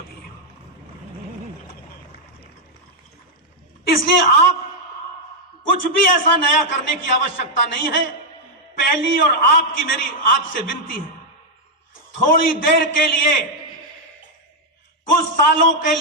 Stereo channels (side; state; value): both; normal; correlation -0.01